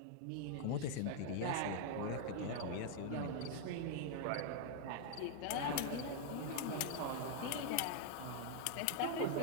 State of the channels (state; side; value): different; both; correlation 0.00